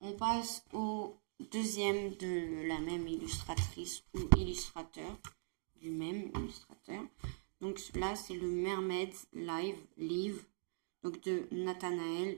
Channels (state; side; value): silent; left; digital silence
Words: passe au deuxième de la même illustratrice ou illustrateur, du même illustrateur. Donc là, c'est le Mermaid Live, donc de